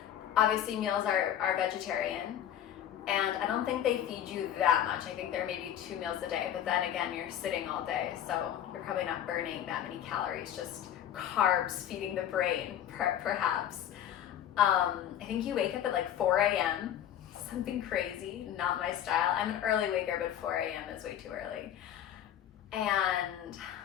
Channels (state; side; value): quieter; right; 10.7 dB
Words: Obviously meals are vegetarian. And I don't think they feed you that much. I think there may be 2 meals a day, but then again, you're sitting all day, so you're probably not burning that many calories, just carbs feeding the brain, perhaps. I think you wake up at 4 a.m., something crazy, not my style. I'm an early waker, but 4 a.m. is way too early. And